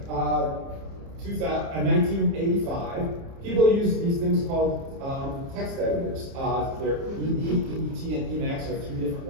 people used these things called text editors. They're ED, EDT, and Emacs are 3 different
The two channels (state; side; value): late; left; 30 ms